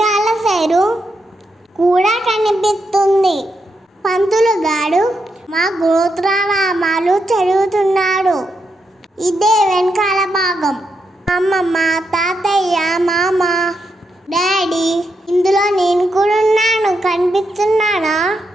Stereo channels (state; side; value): normal; both; correlation 0.83